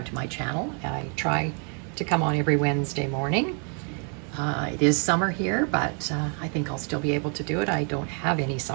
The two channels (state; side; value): quieter; left; 40.0 dB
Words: to my channel. I try to come on every Wednesday morning. It is summer here, but I think I'll still be able to do it. I don't have any